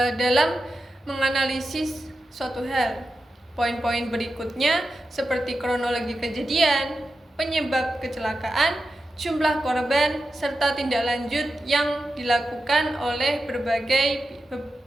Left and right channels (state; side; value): normal; both; correlation 0.91